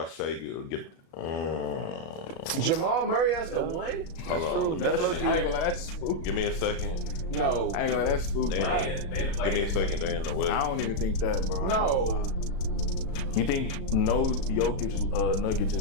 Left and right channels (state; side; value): late; right; 37 ms